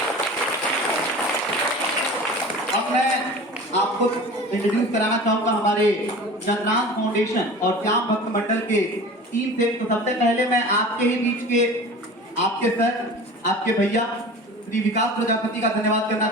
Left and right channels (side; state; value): both; normal; correlation 0.38